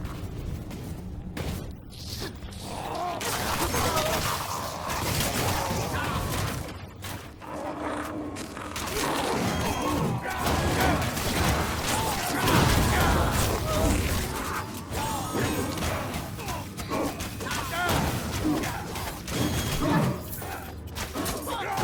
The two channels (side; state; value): both; identical; correlation 1.00